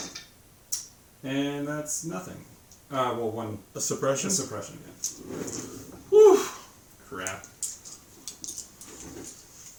and that's nothing. Well, 1 A suppression? suppression. Yeah. Whew. Crap.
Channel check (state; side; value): identical; both; correlation 1.00